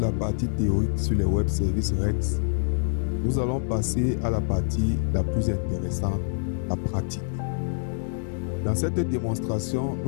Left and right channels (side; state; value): right; silent; digital silence